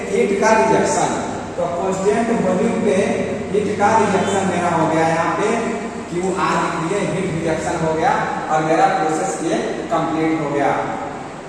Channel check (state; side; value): identical; both; correlation 1.00